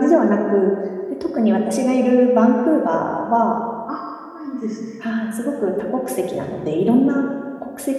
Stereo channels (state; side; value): identical; both; correlation 1.00